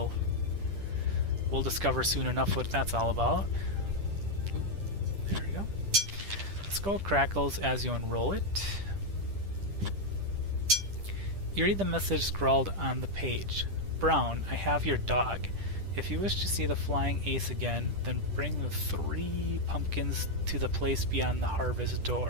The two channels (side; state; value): left; late; 10 ms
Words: discover soon enough what that's all about. Ooh, there we go. The skull crackles as you unroll it. You read the message scrawled on the page. Brown, I have your dog. If you wish to see the flying ace again, then bring the 3 pumpkins to the place beyond the harvest